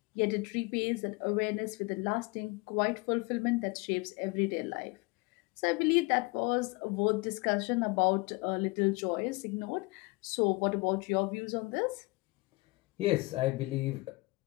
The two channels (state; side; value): quieter; right; 25.1 dB